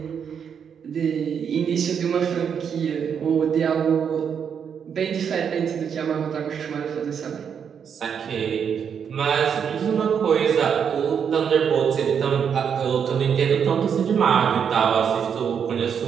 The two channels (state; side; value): quieter; left; 7.4 dB